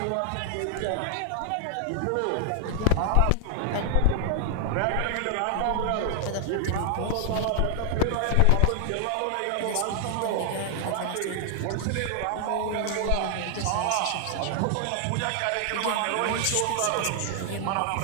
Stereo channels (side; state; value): both; different; correlation 0.00